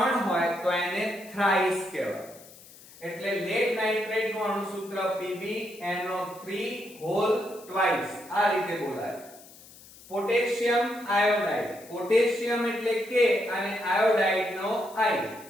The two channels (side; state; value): left; noise; hiss, 21 dB below the sound